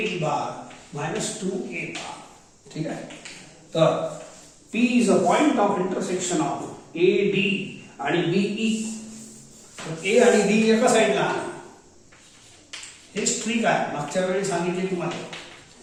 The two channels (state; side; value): identical; both; correlation 1.00